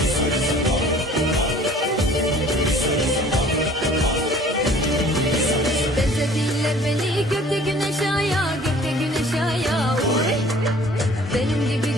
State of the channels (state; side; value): normal; both; correlation 0.51